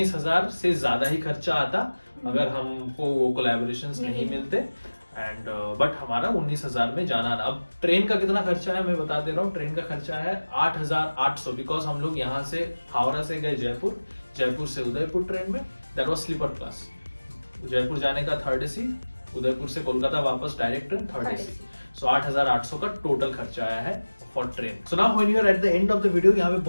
से ज्यादा ही खर्चा आता अगर हमको वो कोलैबोरेशंस नहीं मिलते एंड बट हमारा 19,000 में जाना ना। अब ट्रेन का कितना खर्चा है मैं बता दे रहा हूँ। ट्रेन का खर्चा है 8,800 बिकॉज हम लोग यहाँ से हावड़ा से गए जयपुर, जयपुर से उदयपुर ट्रेन में, that was sleeper class. Jaipur जाने का 3rd AC, उदयपुर से कोलकाता वापस डायरेक्ट ट्रेन 3rd AC। सो 8,800 का टोटल खर्चा आया है for train. So now when you are at the end of the video, यहाँ पे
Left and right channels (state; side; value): inverted; both; correlation -1.00